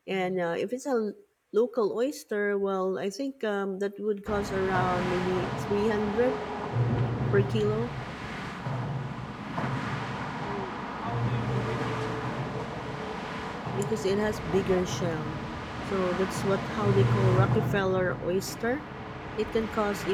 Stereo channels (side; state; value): both; identical; correlation 1.00